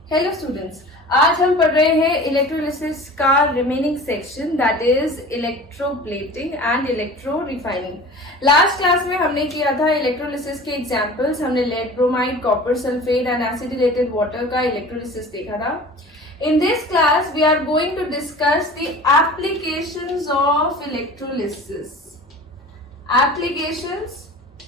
हेलो स्टूडेंट्स, आज हम पढ़ रहे हैं इलेक्ट्रोलिसिस का remaining section that is electroplating and electro refining. Last class में हमने किया था इलेक्ट्रोलिसिस के एग्जांपल्स। हमने lead bromide, copper sulphate and acidulated water का इलेक्ट्रोलिसिस देखा था। In this class, we are going to discuss the applications of electrolysis. Applications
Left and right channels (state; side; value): normal; both; correlation 0.40